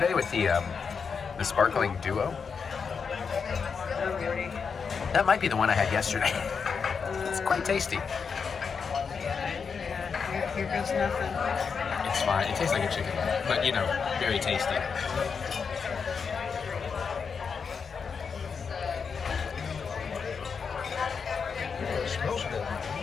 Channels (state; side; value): quieter; right; 5.8 dB